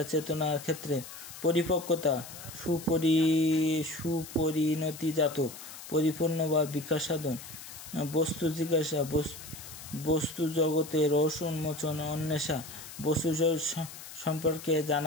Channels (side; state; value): left; noise; hiss, 14 dB below the sound